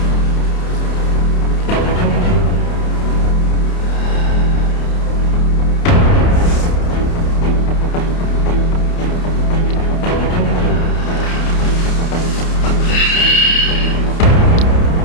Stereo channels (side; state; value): right; late; 29 ms